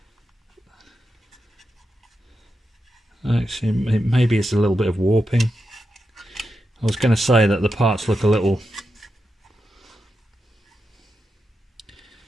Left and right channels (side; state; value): both; normal; correlation 0.88